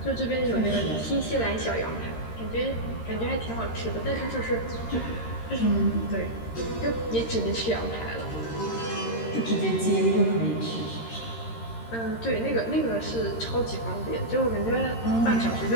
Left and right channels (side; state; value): right; late; 13 ms